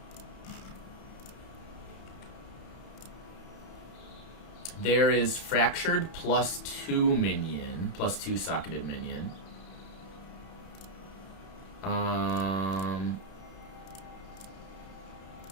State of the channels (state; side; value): late; right; 31 ms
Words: There is fractured +2 minion, +2 socketed minion.